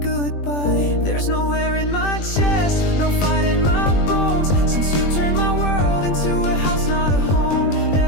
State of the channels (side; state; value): right; late; 20 ms